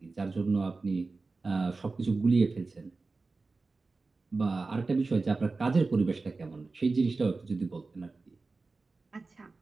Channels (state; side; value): quieter; left; 3.8 dB